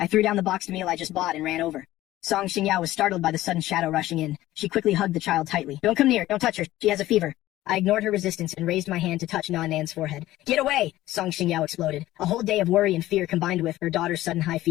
I threw down the boxed meal I just bought and ran over. Song Xingyao was startled by the sudden shadow rushing in. She quickly hugged the child tightly. Don't come near. Don't touch her. She has a fever. I ignored her resistance and raised my hand to touch Nan Nan's forehead. Get away! Song Xingyao exploded. A whole day of worry and fear combined with her daughter's sudden high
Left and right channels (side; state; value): right; quieter; 15.6 dB